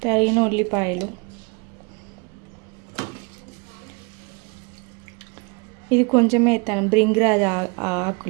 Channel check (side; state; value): left; quieter; 31.2 dB